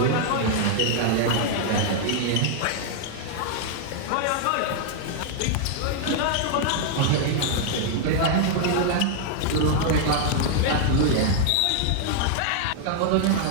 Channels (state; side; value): different; both; correlation 0.00